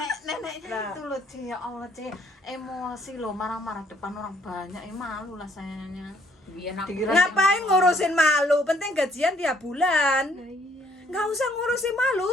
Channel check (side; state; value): both; normal; correlation 0.65